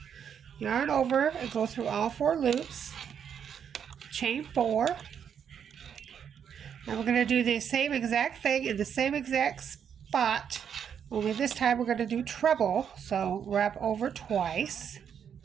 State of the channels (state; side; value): quieter; left; 8.0 dB